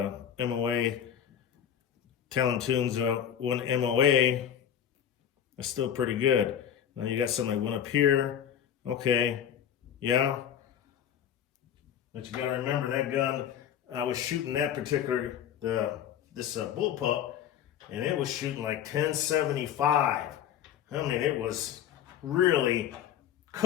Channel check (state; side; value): quieter; right; 9.5 dB